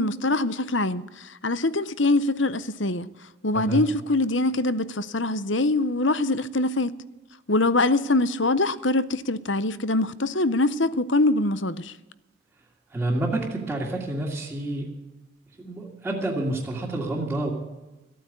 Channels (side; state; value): both; normal; correlation 0.27